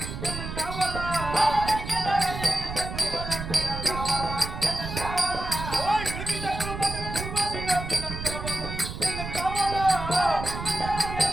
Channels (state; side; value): noise; right; rumble, 7 dB below the sound